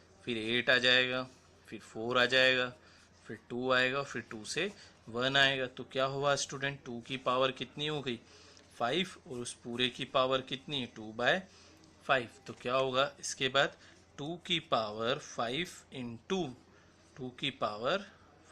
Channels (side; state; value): both; identical; correlation 1.00